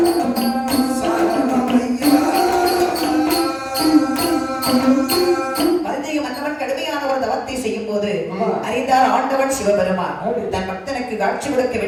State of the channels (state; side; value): identical; both; correlation 1.00